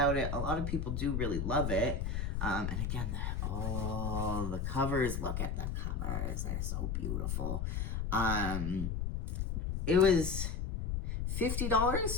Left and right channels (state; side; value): noise; left; rumble, 1 dB below the sound